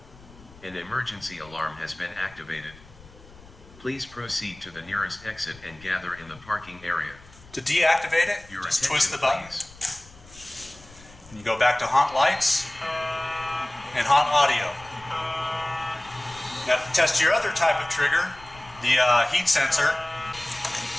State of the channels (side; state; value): left; noise; rumble, 22 dB below the sound